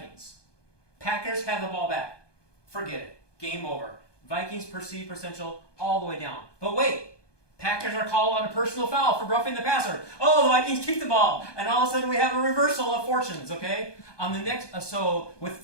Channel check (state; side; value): late; right; 1.2 ms